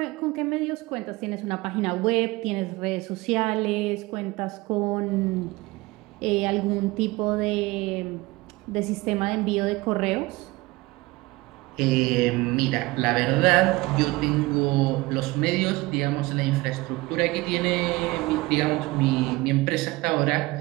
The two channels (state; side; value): quieter; left; 21.4 dB